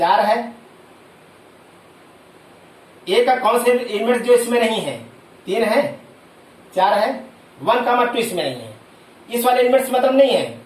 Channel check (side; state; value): both; identical; correlation 1.00